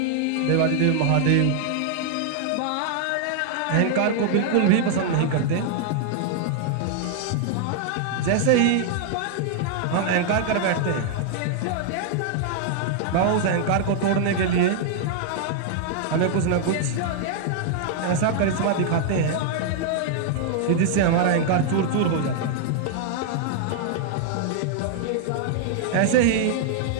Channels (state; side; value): different; both; correlation -0.01